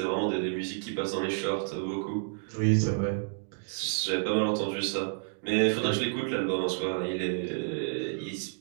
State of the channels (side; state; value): left; silent; digital silence